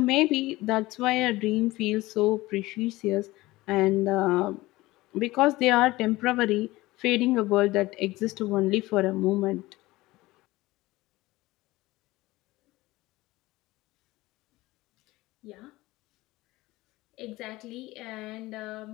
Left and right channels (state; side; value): quieter; right; 19.2 dB